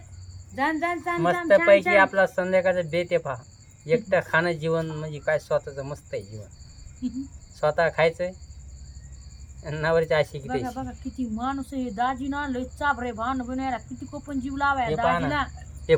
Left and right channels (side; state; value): both; identical; correlation 1.00